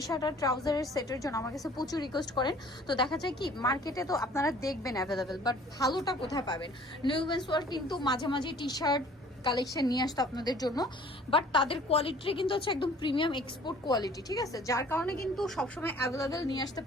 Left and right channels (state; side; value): normal; both; correlation 0.52